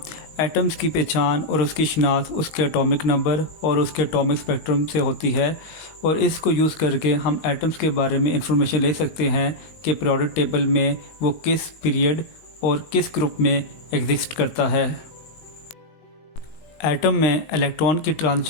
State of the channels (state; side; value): late; right; 19 ms